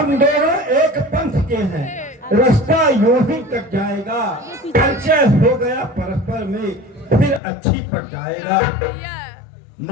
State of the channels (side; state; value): right; drops out; at 7.4 s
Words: एक पंथ के हैं, रास्ता यूं ही कट जाएगा, परिचय हो गया परस्पर में फिर अच्छी पड़ जाएगा।